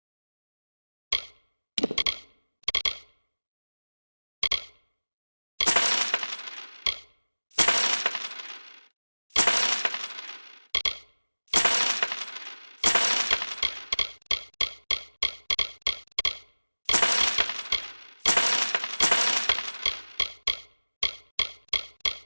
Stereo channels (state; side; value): inverted; both; correlation -1.00